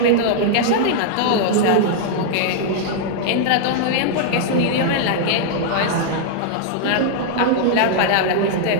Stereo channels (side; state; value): both; different; correlation -0.01